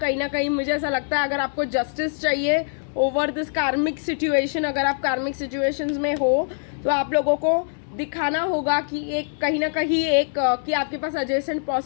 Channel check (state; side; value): silent; right; 62 dB below the other